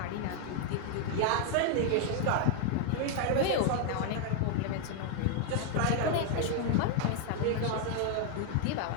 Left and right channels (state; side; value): different; both; correlation 0.00